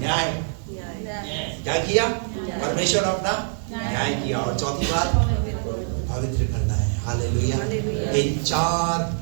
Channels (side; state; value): left; silent; 63 dB below the other